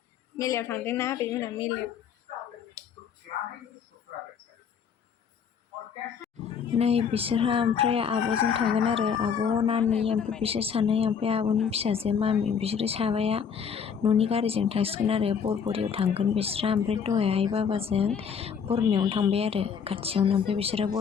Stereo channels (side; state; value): right; quieter; 7.0 dB